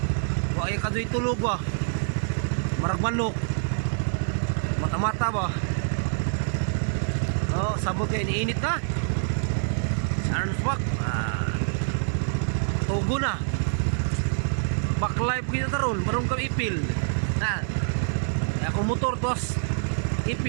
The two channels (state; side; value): silent; left; 61 dB below the other